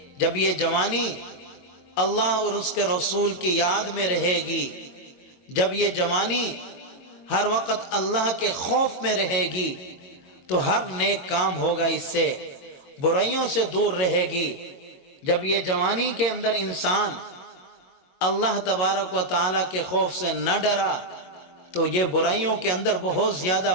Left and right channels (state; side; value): late; right; 22 ms